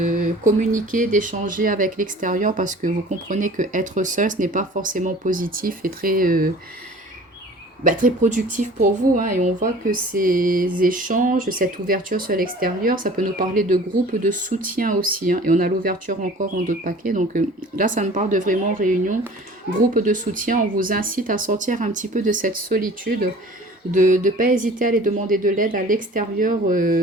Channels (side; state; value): both; normal; correlation 0.46